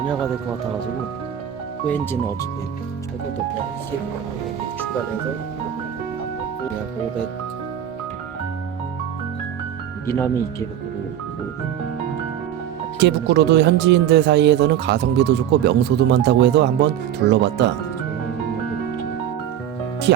될 것 같아가지고 호엔지는 어차피 잘 것도 더 그냥 중간에서 그냥 500 미나미 이케부쿠로도 현지인들 사이에서는 가성비도 좋고 명소도 많다고 해서 한번 둘러봤다. 특히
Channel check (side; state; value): left; quieter; 10.3 dB